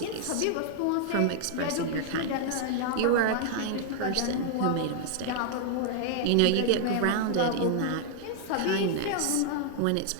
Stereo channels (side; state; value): both; different; correlation -0.01